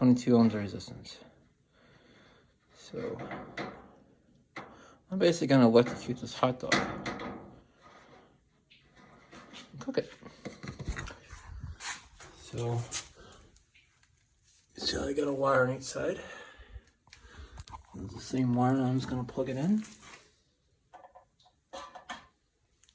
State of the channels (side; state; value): both; identical; correlation 1.00